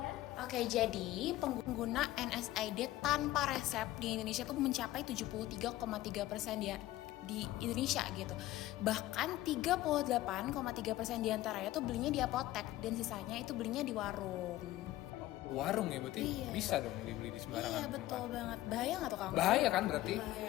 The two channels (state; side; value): quieter; right; 15.9 dB